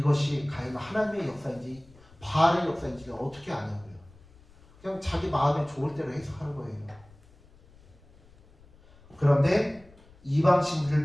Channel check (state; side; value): noise; left; rumble, 26 dB below the sound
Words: 과연 하나님의 역사인지 바알의 역사인지를 어떻게 아냐고요. 그냥 자기 마음에 좋을 대로 해석하는 거예요. 그런데